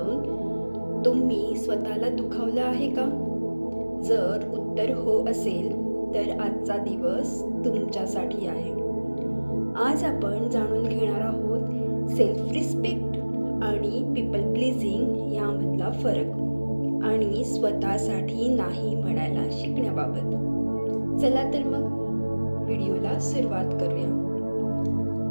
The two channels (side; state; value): both; inverted; correlation -1.00